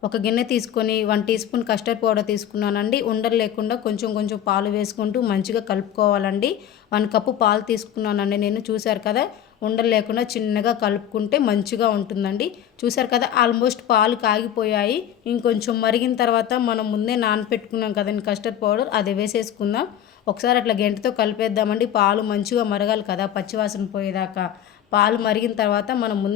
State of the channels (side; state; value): right; quieter; 10.2 dB